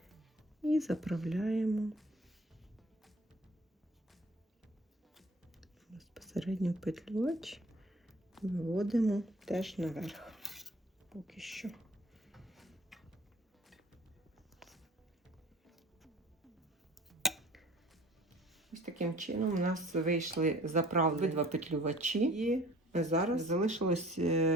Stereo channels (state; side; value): normal; both; correlation 0.49